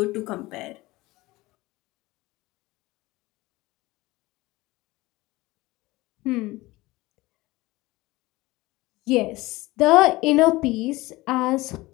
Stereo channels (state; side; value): quieter; right; 20.1 dB